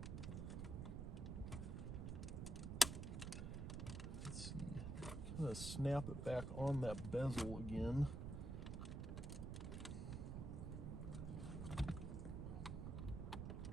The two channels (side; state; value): right; noise; rumble, 4 dB below the sound